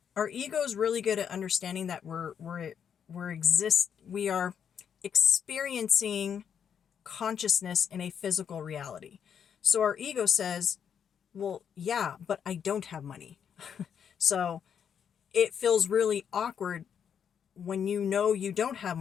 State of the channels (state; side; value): quieter; right; 7.9 dB